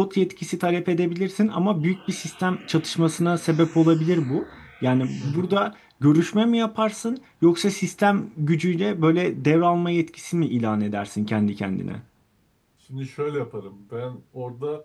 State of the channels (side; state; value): both; identical; correlation 1.00